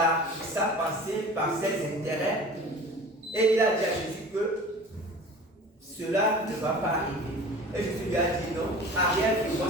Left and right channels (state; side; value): normal; both; correlation 0.41